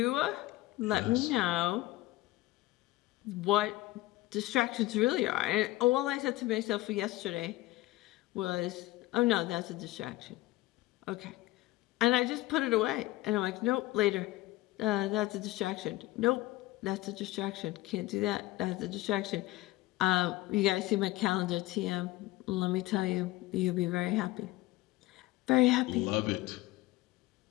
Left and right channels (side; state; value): right; quieter; 18.0 dB